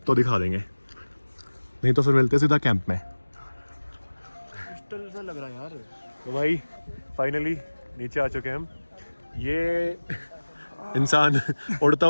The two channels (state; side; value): inverted; both; correlation -1.00